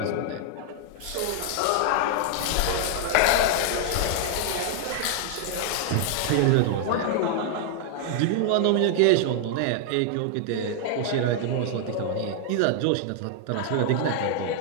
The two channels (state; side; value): different; both; correlation 0.00